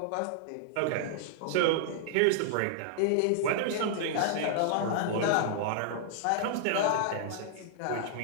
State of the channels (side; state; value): both; different; correlation -0.01